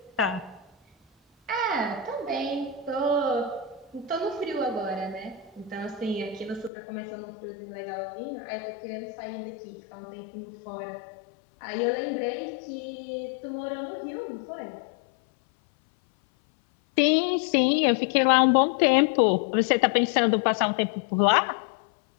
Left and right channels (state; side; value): drops out; right; at 6.7 s